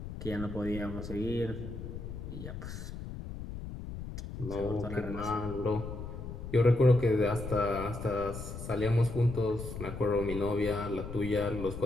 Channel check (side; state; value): left; noise; rumble, 8 dB below the sound